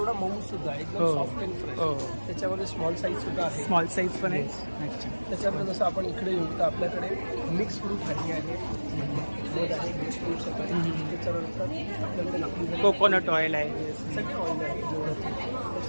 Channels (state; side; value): inverted; both; correlation -1.00